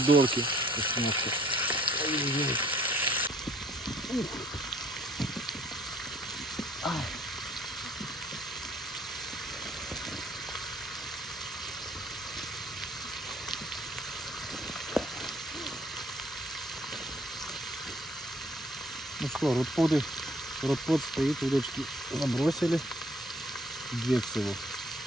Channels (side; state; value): both; normal; correlation 0.59